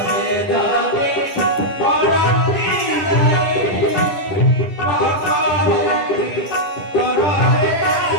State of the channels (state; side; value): late; right; 10 ms